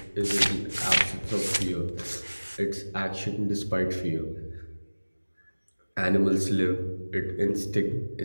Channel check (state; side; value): inverted; both; correlation -1.00